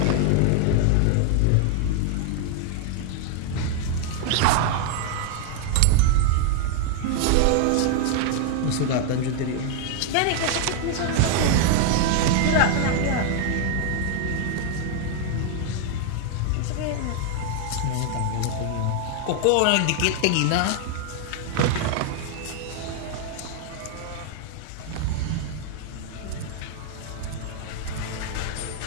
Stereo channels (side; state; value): both; different; correlation 0.00